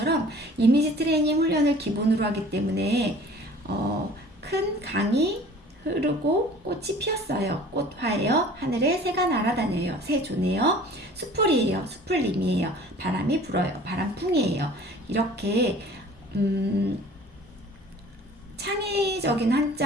이미지 트레이닝 훈련을 기본으로 하기 때문에 큰 강이 흐르고 꽃이 피었어요. 꽃화예요. 하늘에 새가 날아다녀요. 새조네요. 수풀이에요. 수풀님이에요. 바람이 불어요. 바람풍이에요. 이렇게 창의적인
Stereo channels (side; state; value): both; normal; correlation 0.47